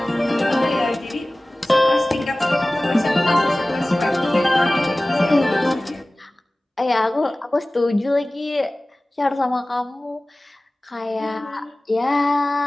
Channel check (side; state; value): both; normal; correlation 0.98